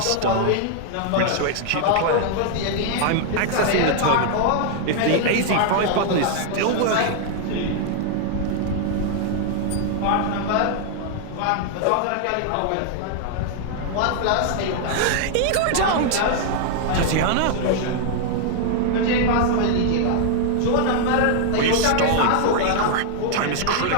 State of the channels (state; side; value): different; both; correlation 0.00